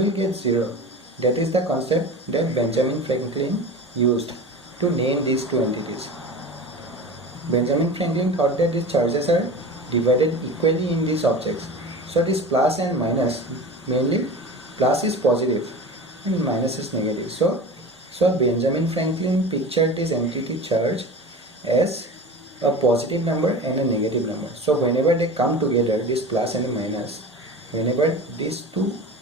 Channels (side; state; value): both; normal; correlation 0.33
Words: get 0. That is the concept that Benjamin Franklin used to name these two entities. Benjamin Franklin thought that these charges are divided equally in these objects. So this plus and minus, mainly plus is positive and minus is negative. So Benjamin Franklin pictured this entity charge as a positive number and a negative number. So whenever they come together, this plus and a minus, whenever these two